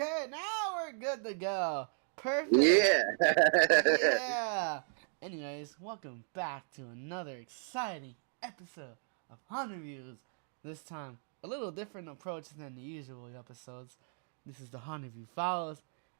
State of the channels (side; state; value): left; silent; 54 dB below the other